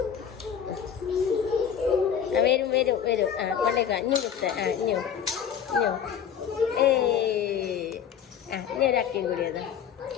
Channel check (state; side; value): quieter; right; 8.3 dB